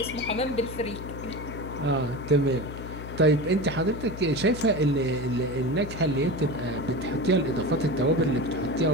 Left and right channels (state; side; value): noise; left; hum, 10 dB below the sound